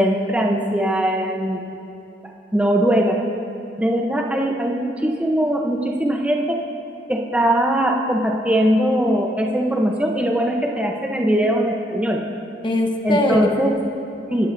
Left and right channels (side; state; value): both; normal; correlation 0.74